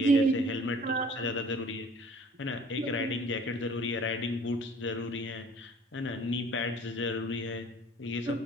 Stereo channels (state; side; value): normal; both; correlation 0.51